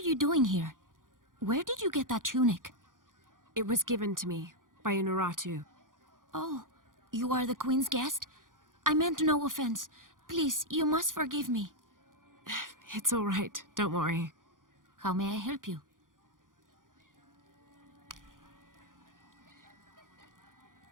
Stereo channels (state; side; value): late; left; 0.89 ms